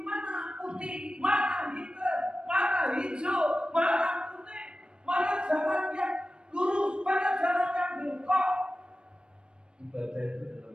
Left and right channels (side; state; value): left; late; 0.053 ms